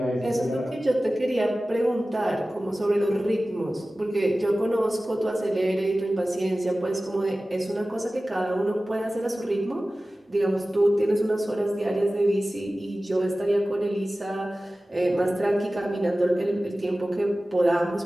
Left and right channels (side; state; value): both; normal; correlation 0.96